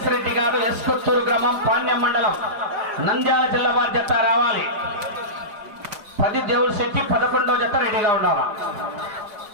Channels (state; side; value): late; left; 4.9 ms